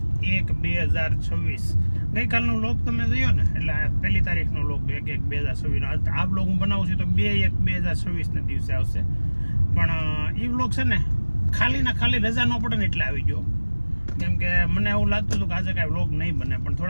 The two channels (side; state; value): both; inverted; correlation -1.00